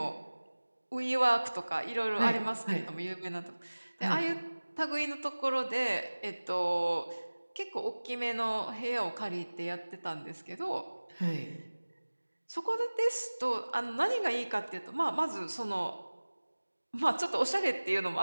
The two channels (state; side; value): inverted; both; correlation -1.00